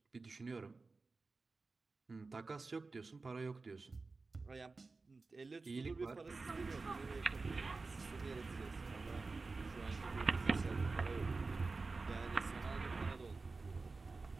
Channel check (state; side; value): quieter; left; 3.9 dB